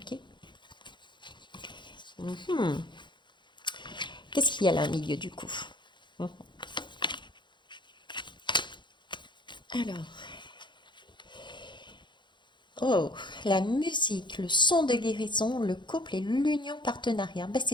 Qu'est-ce qu'il y a là au milieu du coup? Alors. Oh, la musique, le son de guérison, le couple et l'union partenariat. Ben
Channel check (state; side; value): late; right; 0.23 ms